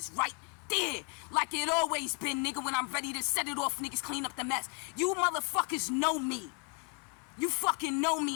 right there, like it always been, nigga. When I'm ready to set it off, niggas clean up the mess. You motherfuckers know me. You fucking know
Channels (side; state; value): right; quieter; 38.0 dB